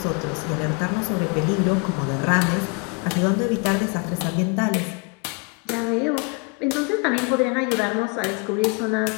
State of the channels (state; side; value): quieter; right; 32.8 dB